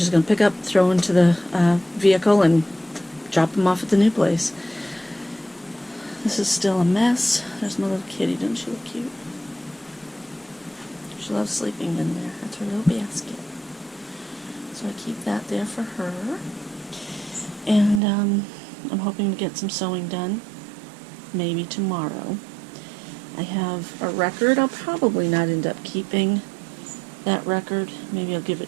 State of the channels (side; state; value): left; drops out; at 18.0 s